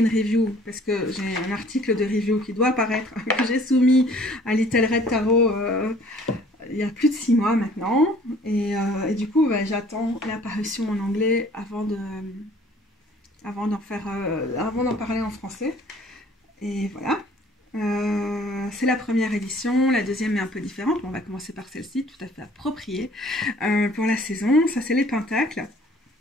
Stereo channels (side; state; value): both; normal; correlation 0.54